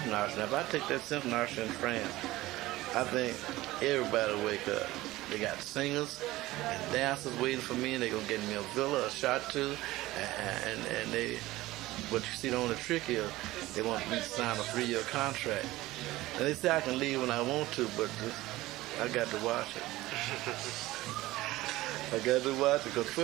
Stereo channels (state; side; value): quieter; left; 17.8 dB